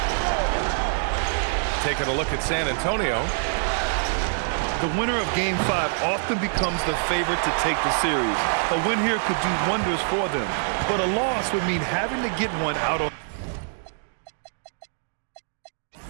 Taking a look at San Antonio. The winner of Game 5 often becomes the favorite to take the series. A win here could do wonders for them, but a loss would mean having to get one out on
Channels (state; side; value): silent; left; digital silence